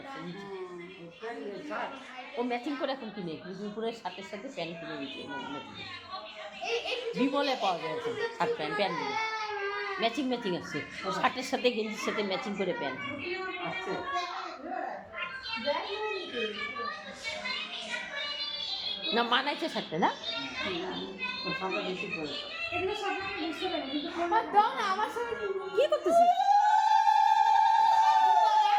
আছে নিচে। ও ম্যাচিং করে এখন কিনে দুপুরের সাথে সাথে প্যান্ট কিনে নিচ্ছে। বিমলে পাওয়া যায় এখন শার্ট প্যান্ট প্যান্টগুলো ম্যাচিং ম্যাচিং আছে, শার্টের সাথে গেঞ্জির সাথে ম্যাচিং করে প্যান্ট না মানাইছে শার্টটা না কি করতেছি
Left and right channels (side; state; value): both; identical; correlation 1.00